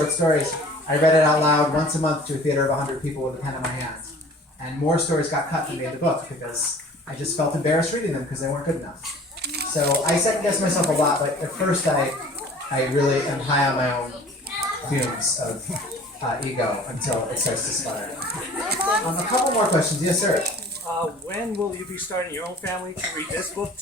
stories, I read it out loud once a month to a theater of 100 people with a pen in my hand. And more stories got cut than made the book because I just felt embarrassed reading them because they weren't good enough. So I second-guess myself a lot, but at first I really am high on my own fumes of ego until it starts to sputter. A couple more questions. Yes, sir? When will you be starting your own family to read this book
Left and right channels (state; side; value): normal; both; correlation 0.47